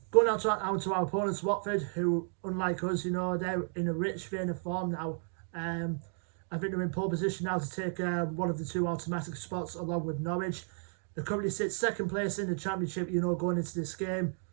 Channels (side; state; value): left; silent; 56 dB below the other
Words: Going out to our opponents, Watford, who, unlike us, they're in a rich vein of form now. I think they're in pole position now to take one of the 2 automatic spots along with Norwich. They currently sit 2nd place in the Championship, going into this game.